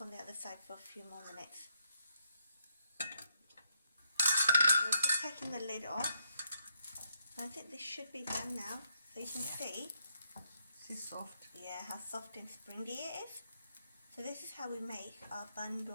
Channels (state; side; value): inverted; both; correlation -0.77